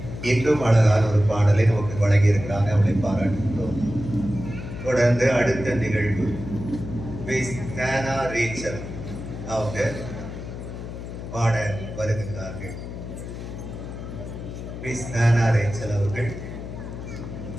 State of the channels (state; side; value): noise; left; hum, 9 dB below the sound